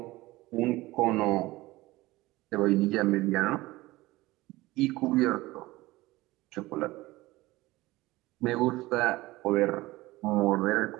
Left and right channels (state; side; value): quieter; left; 19.3 dB